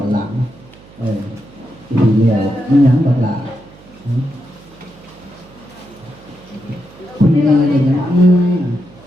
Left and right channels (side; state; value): right; noise; hum, 23 dB below the sound